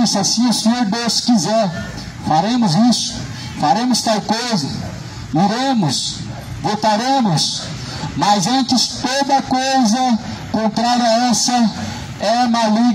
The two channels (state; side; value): identical; both; correlation 1.00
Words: se assim o Senhor Deus quiser, faremos isso, faremos tal coisa, iremos, voltaremos. Mas antes, toda coisa contrária a essa é